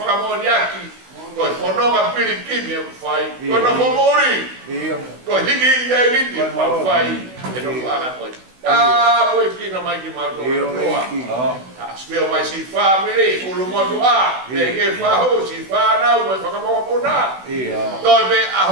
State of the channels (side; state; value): left; late; 16 ms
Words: moniaki. Coi fonoma pirikimi o fai, coi non può morire, coi higi e liti ma fai, e non fa coi. Ah, poi chi non mai chiamato no. Spero mai si fa mire, un modo a, perché fa si fa na, poi fa come pona. Dove a